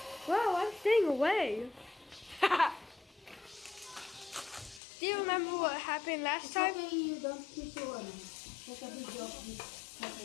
Wow, I'm staying away. Do you remember what happened last It's time? okay, you don't need to take a video of this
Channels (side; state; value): right; drops out; at 4.8 s